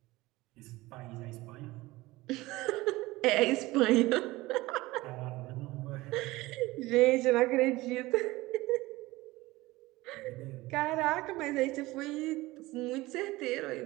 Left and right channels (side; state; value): left; quieter; 19.7 dB